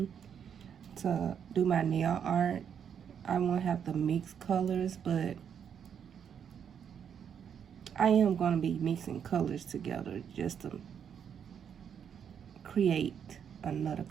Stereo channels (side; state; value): left; quieter; 8.0 dB